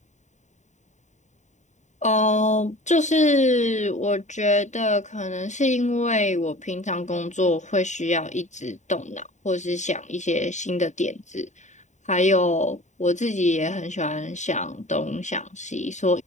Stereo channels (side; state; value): right; late; 0.34 ms